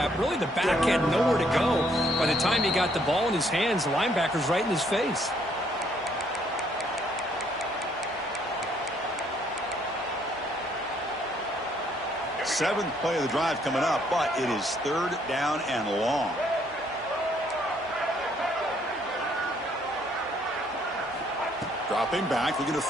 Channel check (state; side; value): normal; both; correlation 0.67